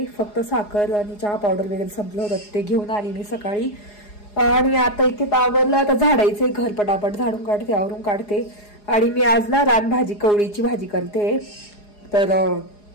फक्त साखर आणि चहा पावडर वगैरे संपलं होतं, ते घेऊन आली मी सकाळी. आणि आता इथे आवरलं, आता झाडायचंय घर, पटापट झाडून काढते, आवरून काढते. आणि मी आज ना रानभाजी कवळीची भाजी करते. तर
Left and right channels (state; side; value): late; right; 4.8 ms